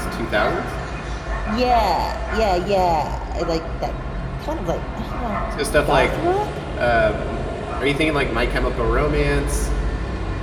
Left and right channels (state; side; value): identical; both; correlation 1.00